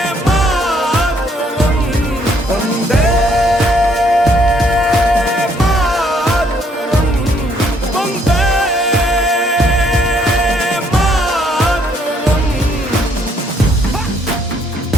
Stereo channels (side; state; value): both; normal; correlation 0.68